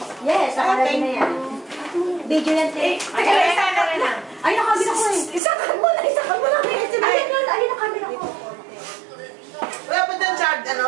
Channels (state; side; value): drops out; left; at 5.4 s